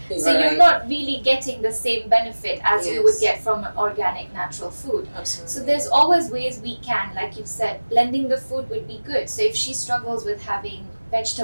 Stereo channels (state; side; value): inverted; both; correlation -1.00